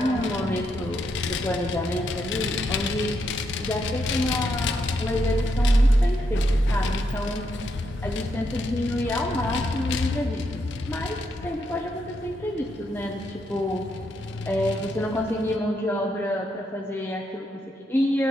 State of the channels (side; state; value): both; normal; correlation 0.79